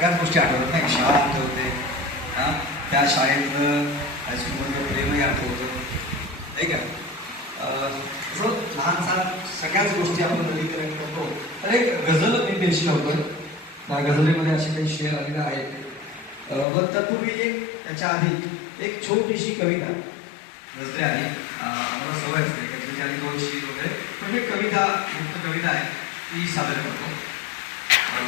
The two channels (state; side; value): drops out; right; at 16.7 s